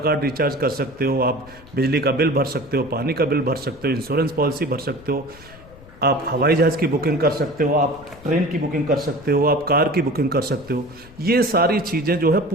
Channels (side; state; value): left; noise; rumble, 21 dB below the sound